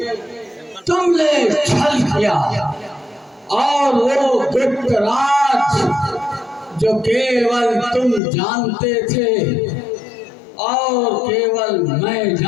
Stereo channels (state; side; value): drops out; right; at 8.2 s